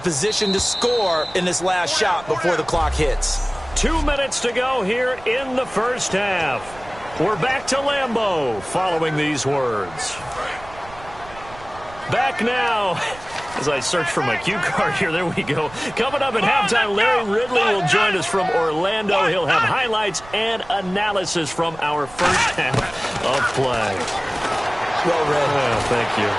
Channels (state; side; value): noise; right; rumble, 19 dB below the sound